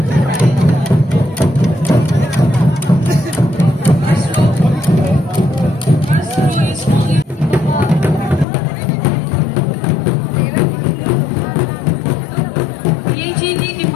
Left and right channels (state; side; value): drops out; right; at 8.5 s